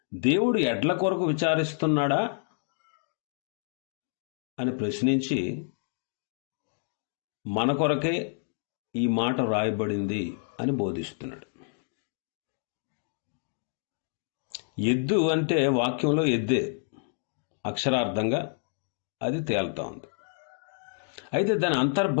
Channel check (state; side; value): silent; right; digital silence